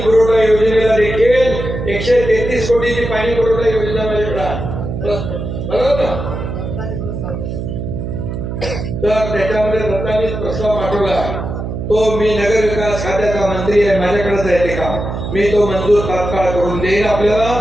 पुरवठा योजनेला देखील 133 कोटीची पाणी पुरवठा योजना माझ्याकडे बरोबर ना. तर त्याच्यामध्ये दत्तानीच प्रस्ताव पाठवला. तो मी नगर विकास खात्याचा मंत्री आहे, माझ्याकडेच आहे ते काम. मी तो मंजूर तात्काळ करून देईन. आपल्याला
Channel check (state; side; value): noise; right; hum, 5 dB below the sound